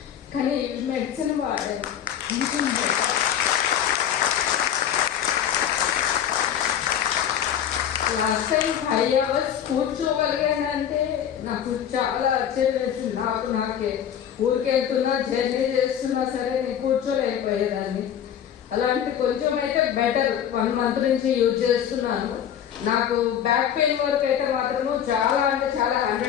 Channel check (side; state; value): right; quieter; 9.4 dB